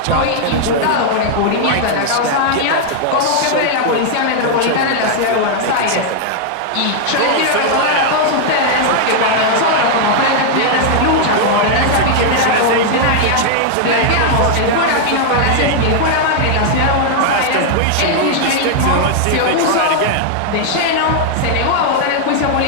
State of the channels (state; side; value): different; both; correlation 0.00